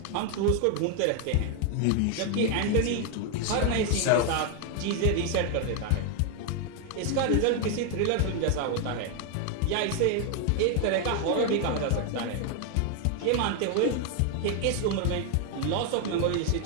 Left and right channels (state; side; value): different; both; correlation 0.00